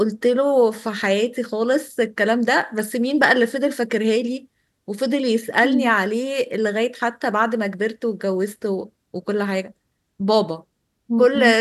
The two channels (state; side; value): identical; both; correlation 1.00